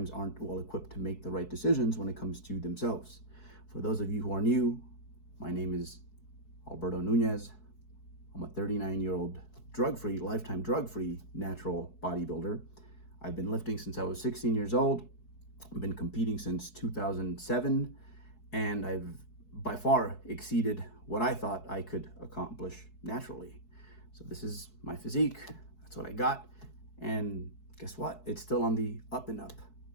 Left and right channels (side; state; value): right; late; 4.6 ms